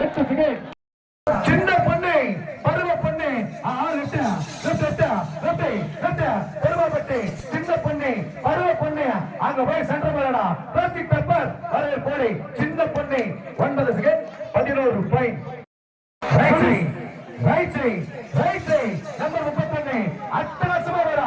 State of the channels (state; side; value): identical; both; correlation 1.00